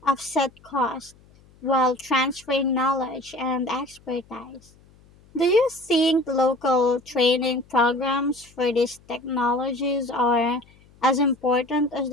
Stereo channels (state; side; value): noise; left; hum, 28 dB below the sound